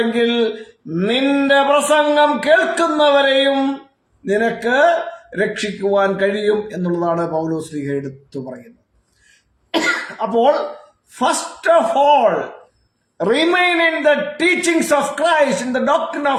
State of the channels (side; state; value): both; identical; correlation 1.00